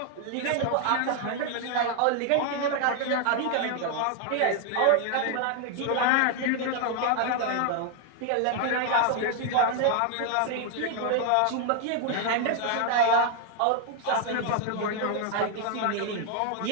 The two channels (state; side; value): different; both; correlation 0.00